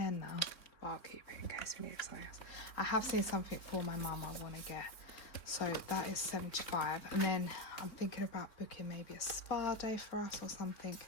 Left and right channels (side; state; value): right; late; 3.6 ms